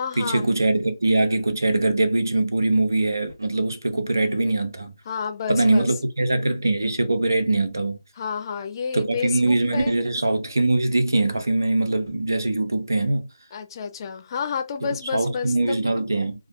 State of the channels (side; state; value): both; inverted; correlation -0.92